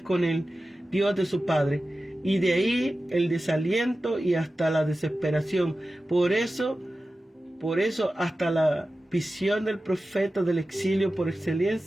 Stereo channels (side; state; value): both; normal; correlation 0.94